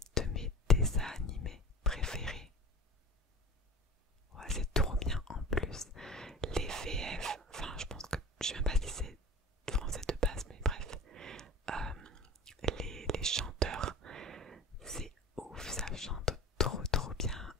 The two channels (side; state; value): both; normal; correlation 0.36